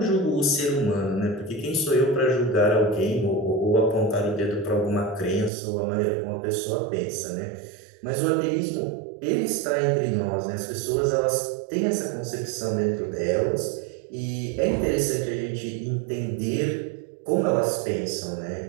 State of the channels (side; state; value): left; drops out; at 5.5 s